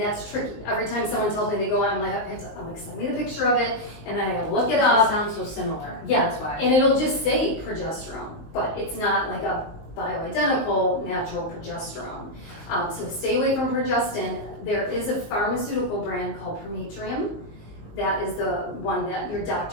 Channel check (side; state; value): right; late; 19 ms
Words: tricky. Every time someone tells me they go on, I'm like, send me the picture of it, and then I gotta look it It up. sounds so similar. Yeah, That's why. and it'll just say progesterone, but it's not like a bioidentical natural progesterone. So stay away from progestin. There is a pharmaceutical brand called Prometrium. That is the one that your